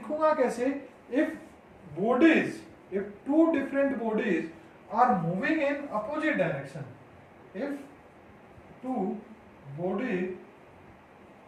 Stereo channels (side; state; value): both; identical; correlation 1.00